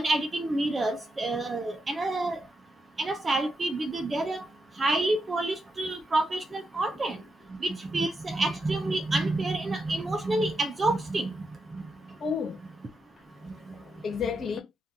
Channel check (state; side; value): normal; both; correlation 0.85